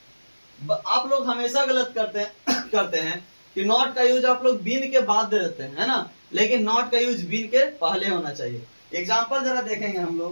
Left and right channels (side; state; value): both; inverted; correlation -1.00